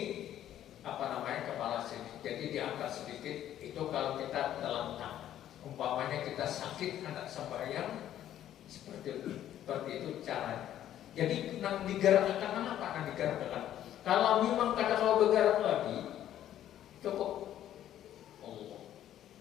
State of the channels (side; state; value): right; quieter; 11.6 dB